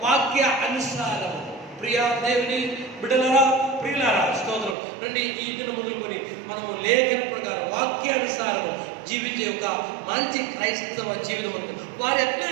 వాక్య అనుసారము. ప్రియా దేవుని బిడ్డలారా, ప్రియులారా, స్తోత్రం. రండి ఈ దినం మొదలుకొని మనము లేఖన ప్రకారం వాక్యానుసారము జీవించే ఒక మంచి క్రైస్తవ జీవితం ఉంటుంది. వారు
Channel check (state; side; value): drops out; left; at 4.8 s